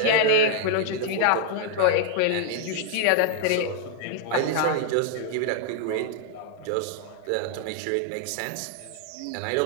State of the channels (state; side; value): different; both; correlation 0.00